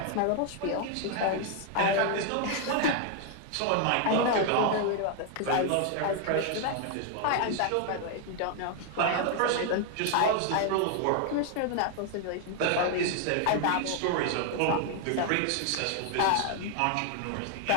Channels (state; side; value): different; both; correlation 0.00